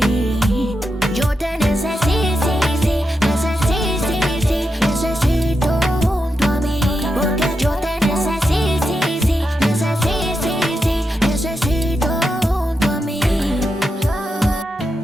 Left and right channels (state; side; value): normal; both; correlation 0.87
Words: Yo te necesito, necesito junto a mí. Porque yo te necesito junto a mí.